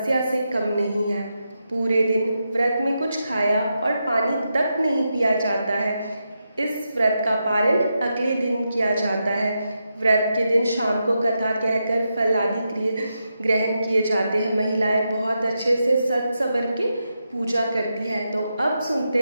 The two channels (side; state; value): both; inverted; correlation -0.86